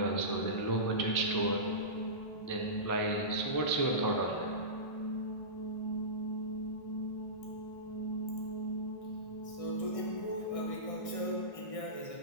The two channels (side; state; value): right; late; 1.6 ms